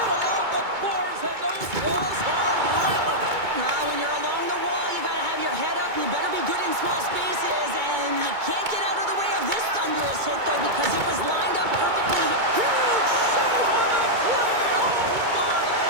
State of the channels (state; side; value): late; left; 2.2 ms